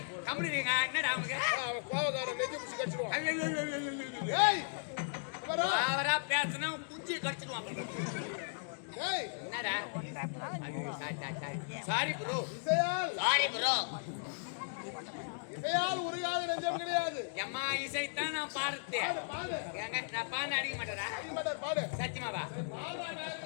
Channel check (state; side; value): silent; right; digital silence